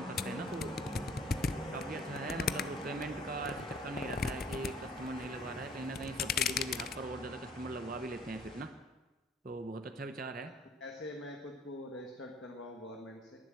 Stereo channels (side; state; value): both; normal; correlation 0.56